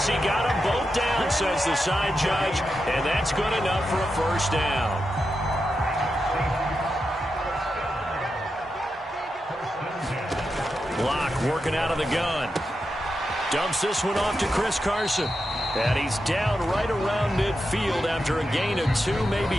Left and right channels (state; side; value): normal; both; correlation 0.88